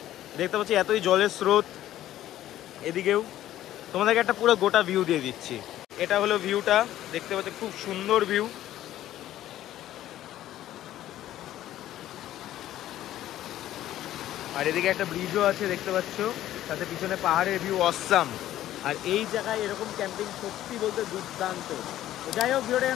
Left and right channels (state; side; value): quieter; right; 13.2 dB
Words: দেখতে পাচ্ছি এতই জলের স্রোত, এদিকেও তোমাদেরকে একটা পুরো গোটা ভিউ দিয়ে দিচ্ছি। এটা হলো ভিউটা, দেখতে পাচ্ছি খুব সুন্দর ভিউ। আর এদিকে একটা ব্রিজও আছে দেখতে পাচ্ছ, সাথে পিছনে পাহাড়ের ভিউ অসাম। আর এই জায়গায় এরকম ক্যাম্পিং সত্যি বলতে দুর্দান্ত। তো যাই হোক, ভিডিওটা